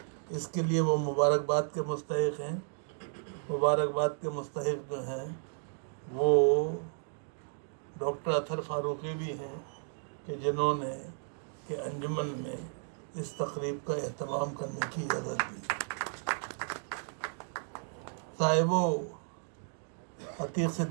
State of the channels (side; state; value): left; silent; digital silence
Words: اس کے لیے وہ مبارکباد کے مستحق ہیں. مبارکباد کے مستحق جو ہیں وہ ڈاکٹر اطہر فاروقی بھی ہیں کہ جنہوں نے کہ انجمن میں اس تقریب کا اہتمام کرنے کی اجازت دی. صاحبو، عتیق